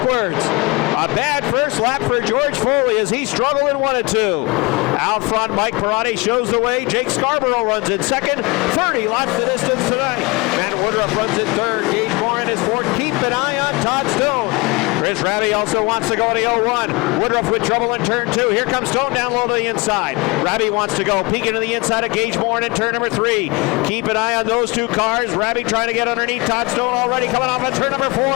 A bad first lap for George Foley as he struggled in 1 and 2. Out front, Mike Perotti shows the way. Jake Scarborough runs in second. 30 laps the distance tonight. Matt Woodruff runs in third. Gage Morin is fourth. Keep an eye on Todd Stone. Chris Robbie also wants to go to the 0-1. Woodruff with trouble in turn 2. Here comes Stone down low to the inside. Robbie wants to go. Peeking to the inside of Gage Morin in turn number 3. Keep an eye on those 2 cars. Robbie trying to get underneath Todd Stone already coming off at turn number 4.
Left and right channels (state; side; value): quieter; right; 26.2 dB